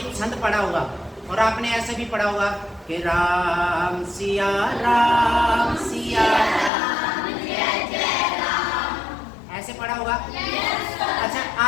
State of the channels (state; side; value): drops out; right; at 6.7 s